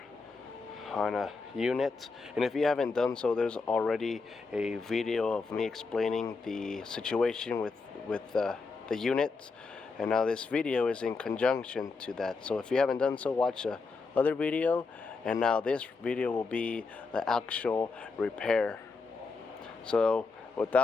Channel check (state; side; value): quieter; right; 4.3 dB